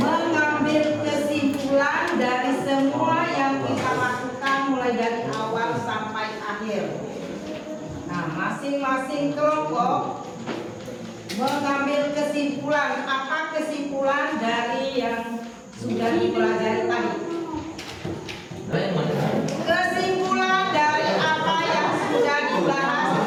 kesimpulan dari semua yang kita lakukan mulai dari awal sampai akhir. Nah, masing-masing kelompok mengambil kesimpulan. Apa kesimpulan dari yang sudah dipelajari tadi? Kesimpulan dari apa yang sudah dibahas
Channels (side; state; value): both; identical; correlation 1.00